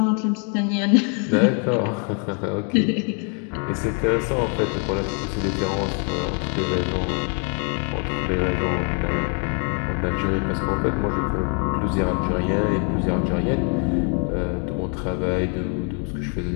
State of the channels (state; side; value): quieter; right; 39.6 dB